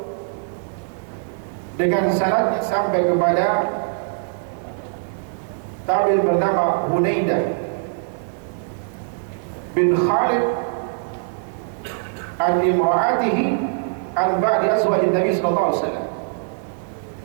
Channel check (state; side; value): silent; left; digital silence